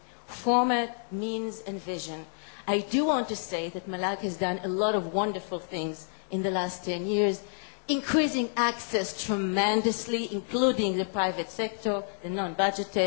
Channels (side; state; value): right; silent; digital silence